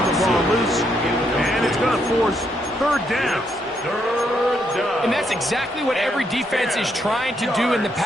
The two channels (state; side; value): normal; both; correlation 0.76